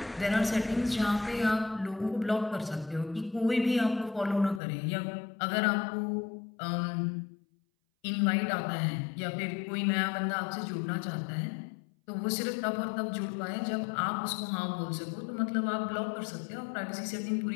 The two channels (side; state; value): right; drops out; at 4.6 s